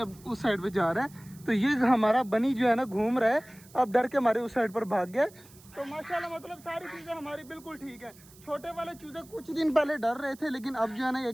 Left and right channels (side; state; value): right; noise; hiss, 24 dB below the sound